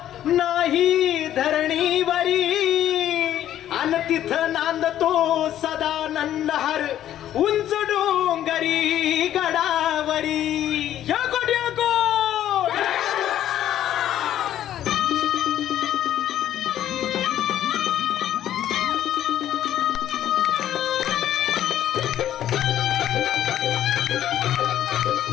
नाही धरणीवरी अन तिथं नांदतो सदानंद हर उंच डोंगरी गडावरी याकोट याकोट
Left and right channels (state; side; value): quieter; right; 11.7 dB